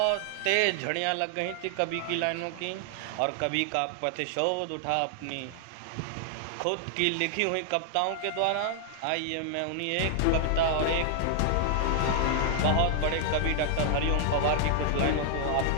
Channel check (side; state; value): both; different; correlation -0.01